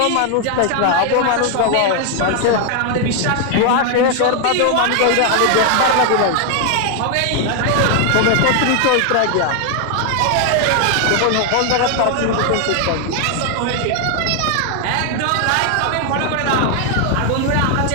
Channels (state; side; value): different; both; correlation 0.00